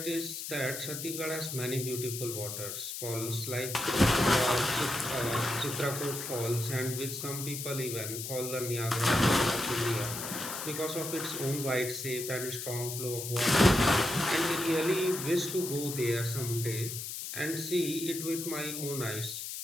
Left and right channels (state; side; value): noise; left; hiss, 6 dB below the sound